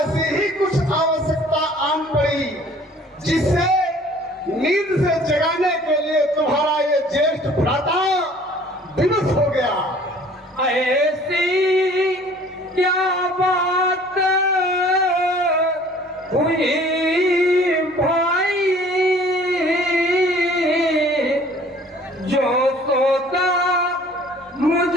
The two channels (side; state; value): both; normal; correlation 0.52